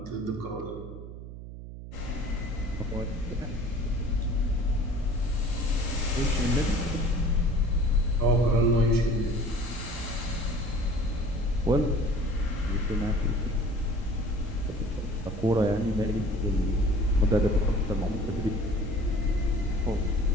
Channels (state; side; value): noise; right; hum, 12 dB below the sound